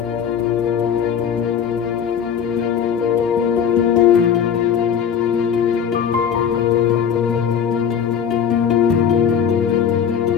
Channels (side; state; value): right; quieter; 7.9 dB